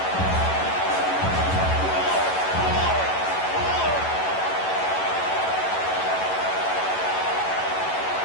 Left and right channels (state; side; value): late; right; 11 ms